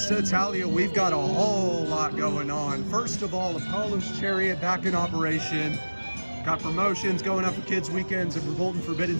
Italia, we've got a whole lot going on. First of all, Apollo's Chariot back in operation. Got promotions going up for kids' weekends at Verbolten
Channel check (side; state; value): both; inverted; correlation -1.00